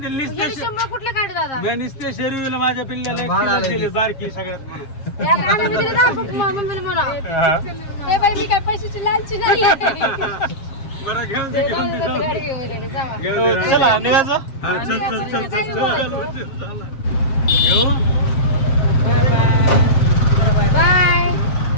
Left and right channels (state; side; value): late; right; 7.5 ms